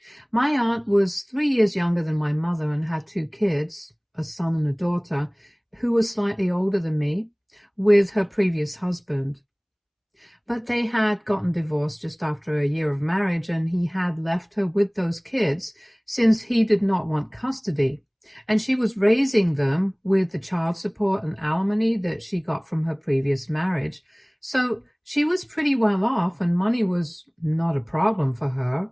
My aunt was 3 years younger than my mother and had two kids, a son and a daughter, who was slightly older than me, with her previous husband. But they had gotten divorced just after a year of marriage, and he had left her with those kids since he did not want custody. And she was raising them with the child support and alimony that she got from her previous marriage. So she was pretty well off, and money was not a problem for her,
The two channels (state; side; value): identical; both; correlation 1.00